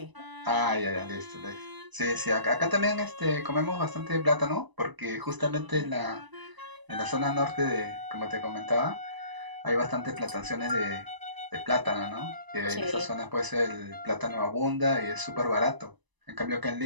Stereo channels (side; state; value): left; late; 1.0 ms